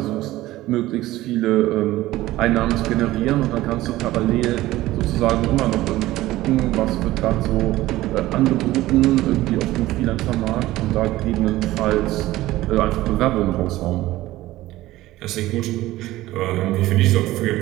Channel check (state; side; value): quieter; left; 16.6 dB